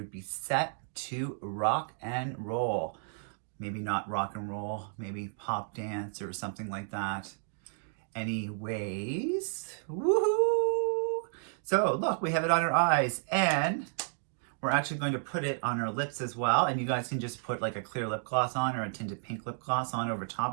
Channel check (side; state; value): left; silent; digital silence